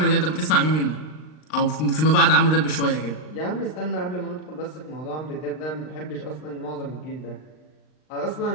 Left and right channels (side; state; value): right; late; 39 ms